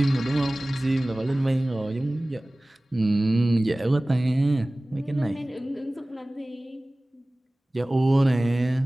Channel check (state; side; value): normal; both; correlation 0.98